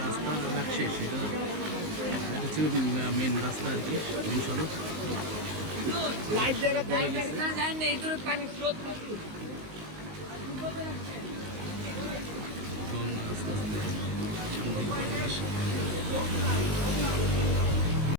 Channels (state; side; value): late; left; 19 ms